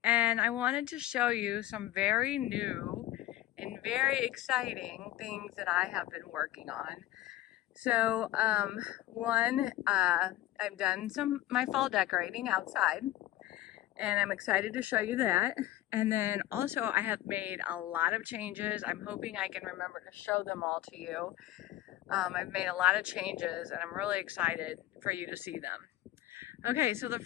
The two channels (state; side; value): quieter; right; 14.8 dB